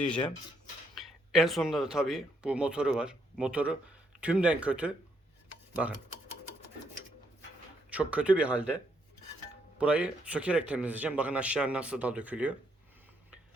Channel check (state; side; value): normal; both; correlation 0.75